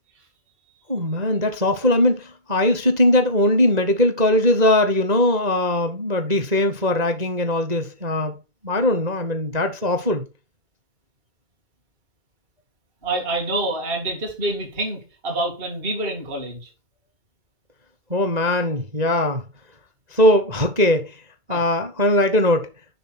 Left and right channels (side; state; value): left; late; 2.0 ms